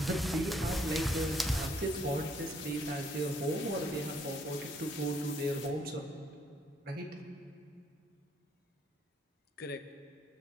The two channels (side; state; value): both; normal; correlation 0.68